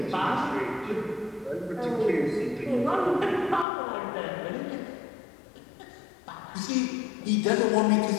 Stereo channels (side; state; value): right; drops out; at 3.7 s